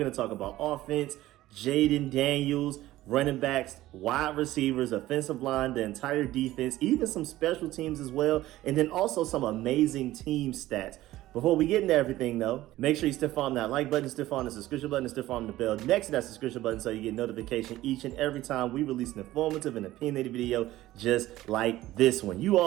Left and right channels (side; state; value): left; quieter; 15.8 dB